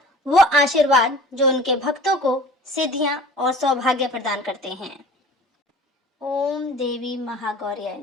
वो आशीर्वाद जो उनके भक्तों को सिद्धियां और सौभाग्य प्रदान करते हैं। ओम देवी महागौर्याय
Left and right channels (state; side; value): normal; both; correlation 0.44